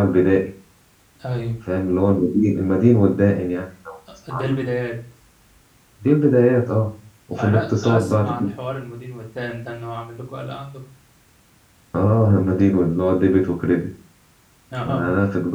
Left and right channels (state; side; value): identical; both; correlation 1.00